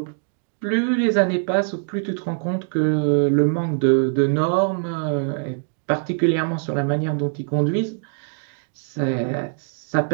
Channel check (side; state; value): left; silent; digital silence